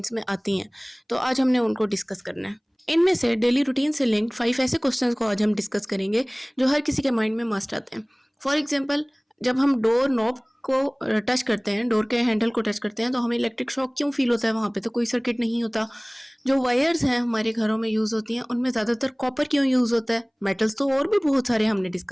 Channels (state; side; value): identical; both; correlation 1.00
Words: में आती हैं. तो आज हमने उनको डिस्कस करना है. इनमें से डेली रूटीन से लिंक्ड 5 ऐसे क्वेश्चंस को आज हम डिस्कस करेंगे जो हर किसी के माइंड में मस्ट आते हैं. फॉर एग्जाम्पल, जब हम डोर नॉब को टच करते हैं, डोर के हैंडल को टच करते हैं, तो हमें इलेक्ट्रिक शॉक क्यों फील होता है? वहाँ पे तो कोई सर्किट नहीं होता. जो वायर्स हैं हमारे घरों में यूज़ होती हैं, उनमें ज़्यादातर कॉपर क्यों यूज़ होता है? मेटल्स तो और भी बहुत सारे हमने